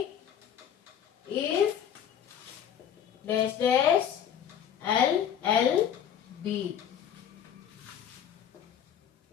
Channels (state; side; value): quieter; right; 9.1 dB